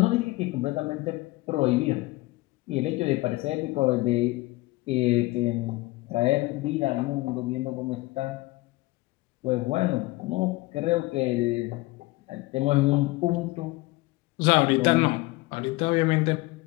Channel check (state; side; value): quieter; right; 20.9 dB